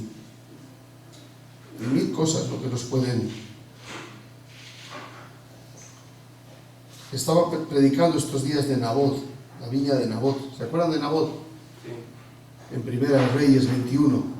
1000 cosas lo que nos pueden... Estaba predicando estos días de Nabot, la viña de Nabot. ¿Se acuerdan de Nabot? Sí. En Primera de Reyes 21.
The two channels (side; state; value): both; identical; correlation 1.00